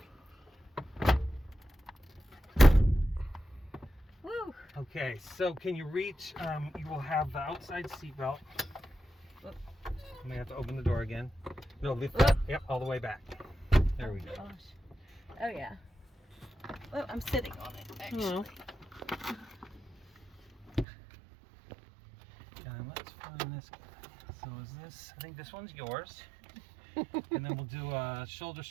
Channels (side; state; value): left; drops out; at 20.9 s